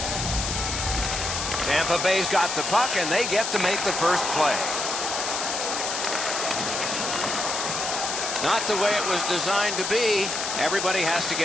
Tampa Bay's got the puck, and they get to make the first play. Not the way it was designed to be. Everybody has to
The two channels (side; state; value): left; noise; hiss, 2 dB below the sound